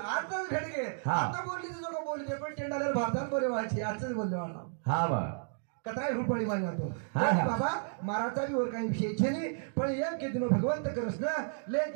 भेट घे आता बोलली तुझं बोलली पण टेंडाला भारतात बरे व्हायची आजच बोलले मला हा बा कतराय रुपाळी मारी जातो बाबा महाराजा बी वर काही विषय छे नाही पण एक के दिनो भगवंत करस ना ले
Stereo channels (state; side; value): silent; left; digital silence